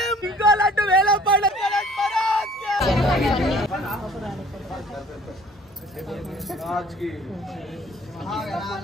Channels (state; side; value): normal; both; correlation 0.52